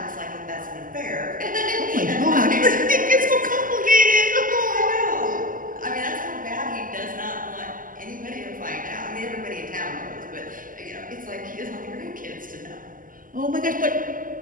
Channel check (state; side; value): late; left; 0.40 ms